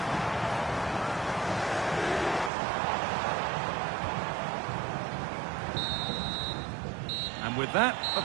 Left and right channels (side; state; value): left; drops out; at 2.5 s